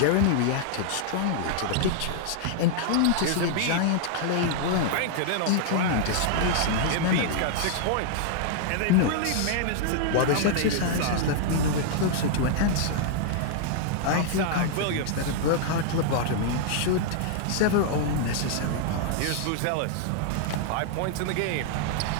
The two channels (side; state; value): both; different; correlation -0.01